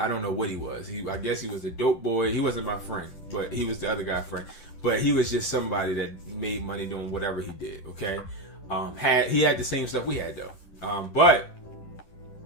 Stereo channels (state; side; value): late; right; 10 ms